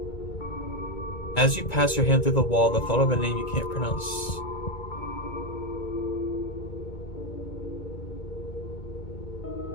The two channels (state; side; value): late; right; 1.9 ms